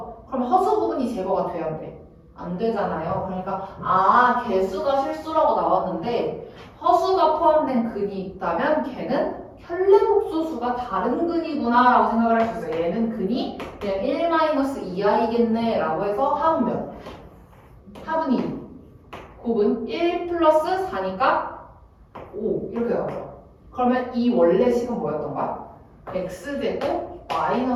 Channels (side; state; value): both; identical; correlation 1.00